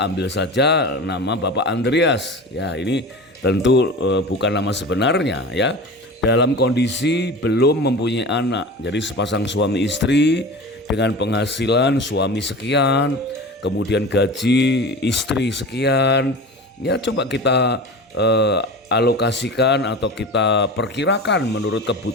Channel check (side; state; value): both; normal; correlation 0.33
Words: Ambil saja nama Bapak Andreas. Ya, ini tentu bukan nama sebenarnya ya. Dalam kondisi belum mempunyai anak. Jadi sepasang suami istri dengan penghasilan suami sekian, kemudian gaji istri sekian. Ya, coba kita alokasikan atau kita perkirakan menurut